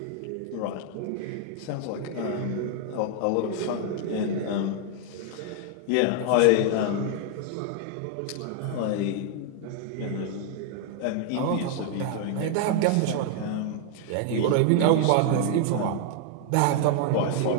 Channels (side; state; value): both; different; correlation 0.00